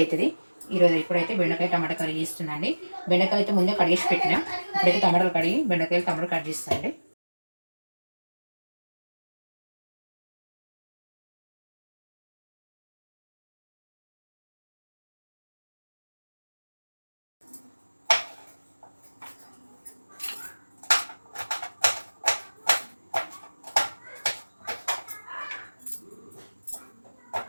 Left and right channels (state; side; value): inverted; both; correlation -1.00